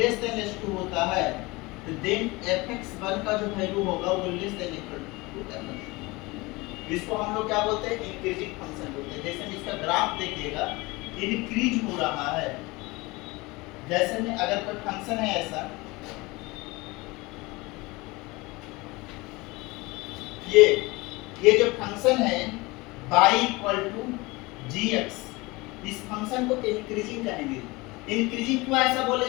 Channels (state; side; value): quieter; right; 23.3 dB